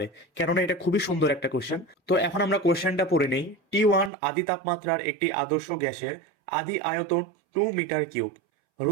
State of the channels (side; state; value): left; drops out; at 4.1 s